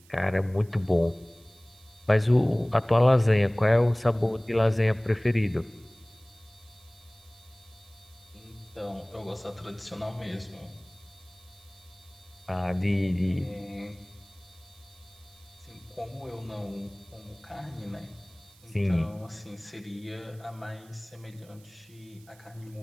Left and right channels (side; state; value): right; noise; hiss, 27 dB below the sound